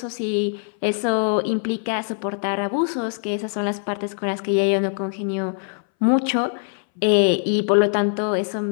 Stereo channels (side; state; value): right; silent; 62 dB below the other